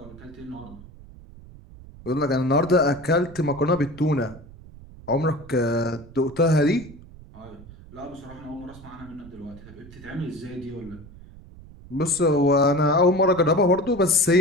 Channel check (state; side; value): noise; right; rumble, 19 dB below the sound